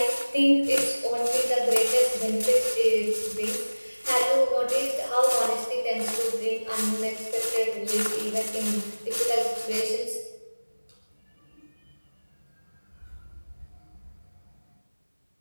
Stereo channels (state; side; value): inverted; both; correlation -1.00